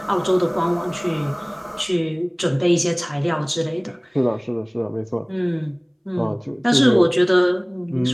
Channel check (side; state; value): both; identical; correlation 1.00